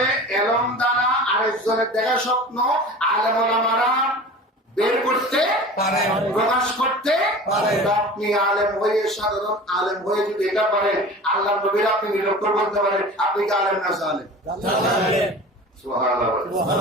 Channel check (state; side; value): normal; both; correlation 0.37